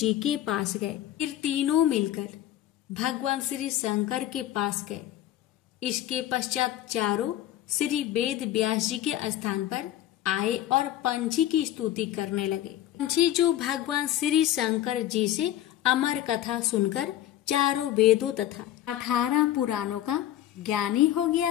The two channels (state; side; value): quieter; right; 12.8 dB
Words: के पास गए। फिर तीनों मिलकर भगवान श्री शंकर के पास गए। इसके पश्चात चारों श्री वेद व्यास जी के स्थान पर आए और पंछी की स्तुति करने लगे। पंछी जो भगवान श्री शंकर जी से अमर कथा सुनकर चारों वेदों तथा 18 पुराणों का ज्ञानी हो